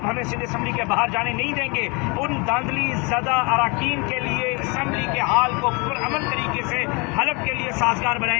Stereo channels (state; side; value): quieter; right; 29.8 dB